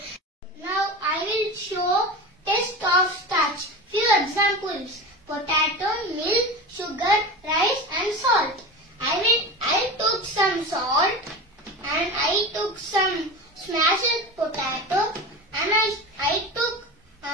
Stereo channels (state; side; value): normal; both; correlation 0.28